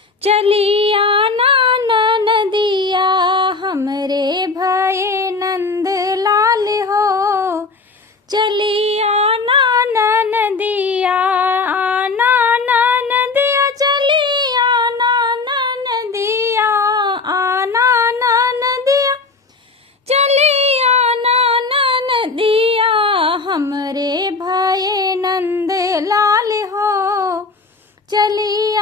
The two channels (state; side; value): quieter; right; 4.0 dB